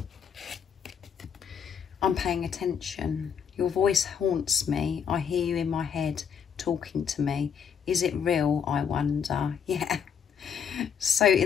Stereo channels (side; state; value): right; quieter; 7.2 dB